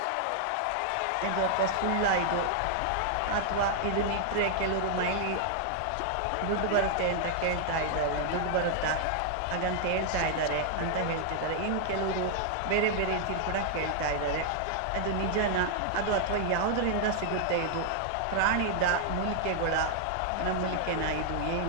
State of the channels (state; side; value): different; both; correlation -0.01